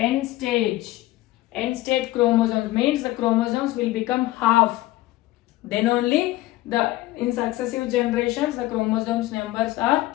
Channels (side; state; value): right; quieter; 17.5 dB